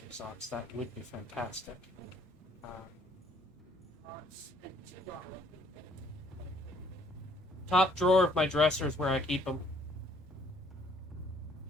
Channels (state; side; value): normal; both; correlation 0.63